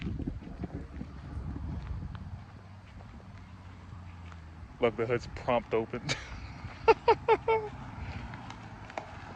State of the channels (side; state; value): both; identical; correlation 1.00